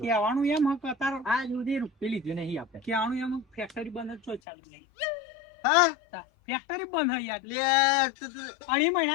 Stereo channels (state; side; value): drops out; right; at 4.4 s